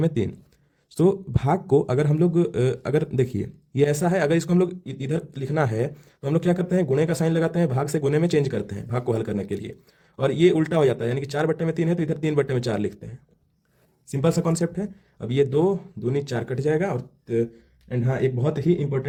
तो भाग को अगर हम लोग अगर देखिए ये ऐसा है, अगर इसको हम लोग इधर लिखना है तो हम लोग क्या करते हैं, गुणे का साइन लगाते हैं, भाग से गुणे में चेंज करते हैं भाग को हल करने के लिए, और ये उल्टा हो जाता है, यानी कि 4/3 है तो इधर 3/4 लिखते हैं। सिंपल सा कॉन्सेप्ट है। अब ये 2 दूनी 4 कट जाएगा, और एंड हाँ, एक बहुत ही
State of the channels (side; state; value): both; identical; correlation 1.00